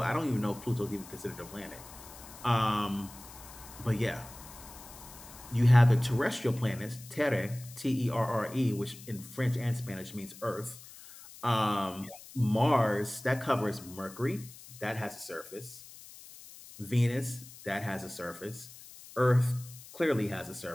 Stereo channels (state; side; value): noise; left; hiss, 17 dB below the sound